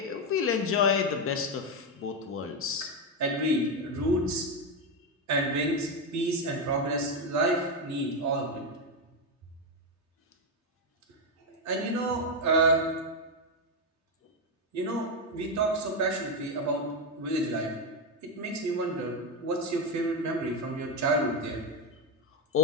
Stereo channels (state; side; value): normal; both; correlation 0.07